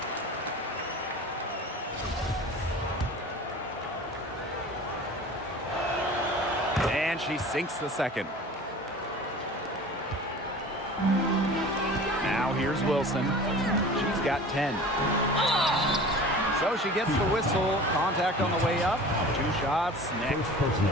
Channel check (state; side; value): normal; both; correlation 0.40